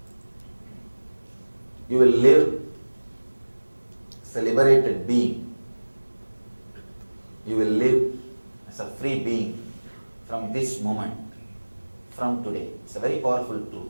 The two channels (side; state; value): both; inverted; correlation -1.00